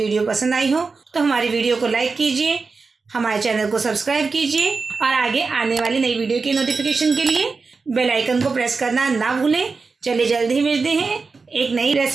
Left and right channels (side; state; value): left; quieter; 4.4 dB